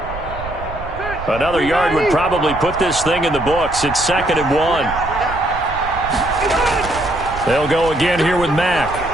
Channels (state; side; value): noise; right; rumble, 11 dB below the sound